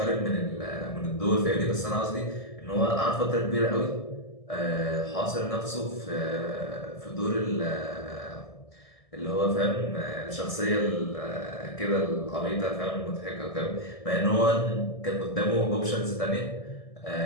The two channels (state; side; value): late; right; 1.6 ms